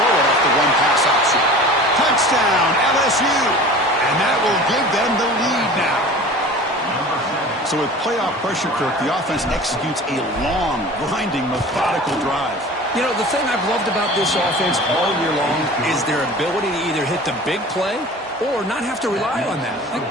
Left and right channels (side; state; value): both; normal; correlation 0.40